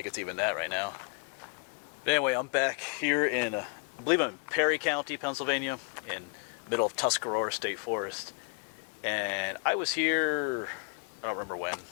it's even that right now. But anyway, I'm back here in, I believe I'm in Perry County, Pennsylvania, in the middle of Tuscarora State Forest. And I was here, I don't remember when,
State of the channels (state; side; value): quieter; right; 36.1 dB